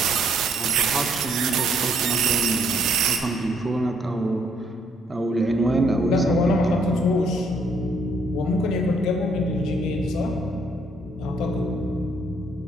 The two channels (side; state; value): both; normal; correlation 0.69